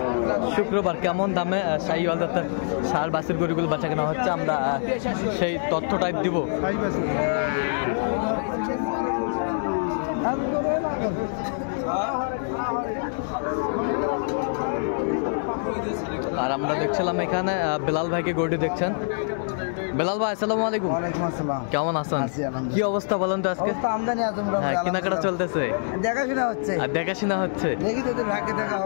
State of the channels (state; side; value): silent; right; digital silence